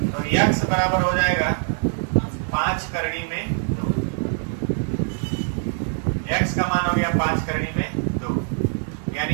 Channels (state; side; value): silent; left; 55 dB below the other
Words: तो x बराबर हो जाएगा 5 करणी में 2। x का मान हो गया 5 करणी में 2, यानी